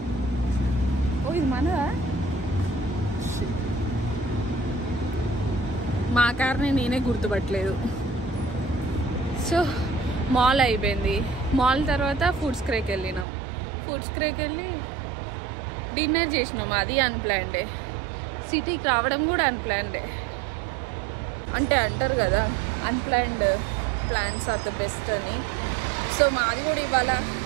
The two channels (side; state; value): left; drops out; at 13.2 s